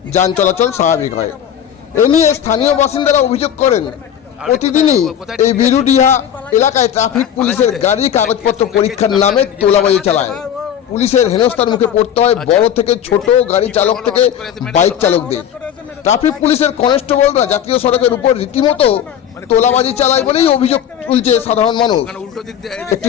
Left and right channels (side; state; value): right; quieter; 9.5 dB